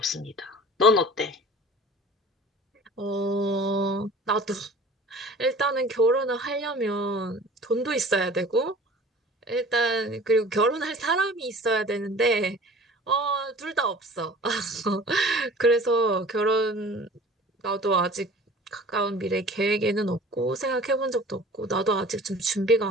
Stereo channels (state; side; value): normal; both; correlation 0.45